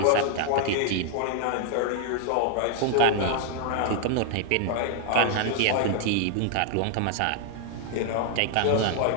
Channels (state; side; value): different; both; correlation 0.00